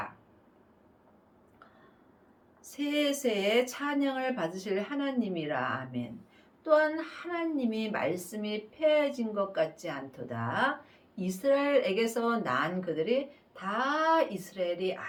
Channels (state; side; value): identical; both; correlation 1.00